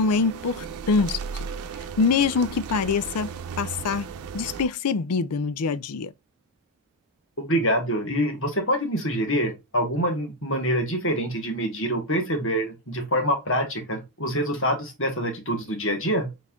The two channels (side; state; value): both; normal; correlation 0.06